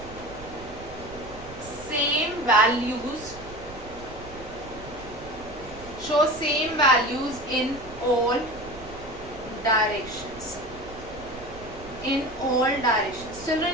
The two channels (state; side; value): noise; right; rumble, 16 dB below the sound